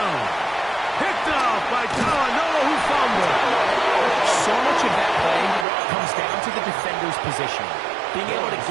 Picked up by Talanoa, who fumbled. So much of that play comes down to the defender's position. Being able to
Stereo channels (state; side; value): drops out; left; at 5.7 s